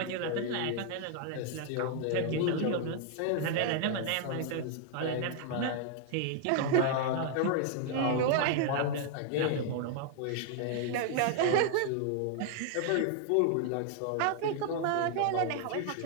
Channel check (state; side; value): different; both; correlation 0.00